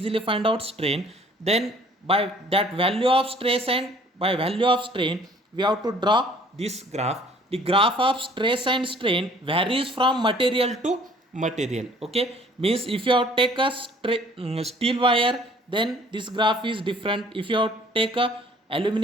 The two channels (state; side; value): normal; both; correlation 0.56